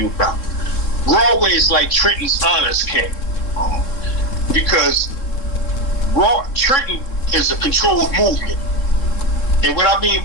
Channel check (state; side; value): late; right; 3.7 ms